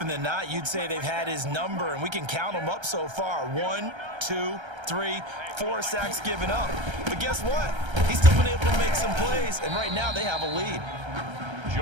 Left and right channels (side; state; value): left; late; 1.3 ms